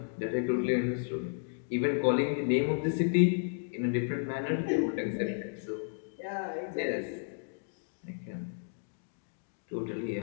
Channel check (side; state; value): right; silent; digital silence